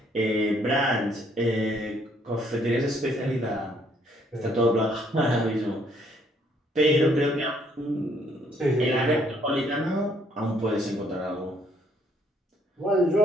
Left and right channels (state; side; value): normal; both; correlation 0.67